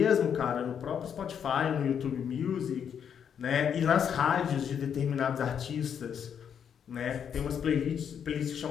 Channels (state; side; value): quieter; right; 8.0 dB